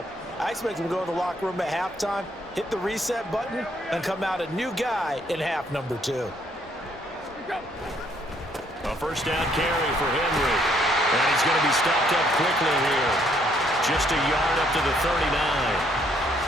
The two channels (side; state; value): both; normal; correlation 0.68